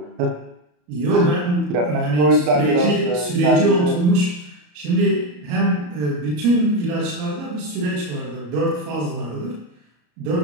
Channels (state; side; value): late; left; 34 ms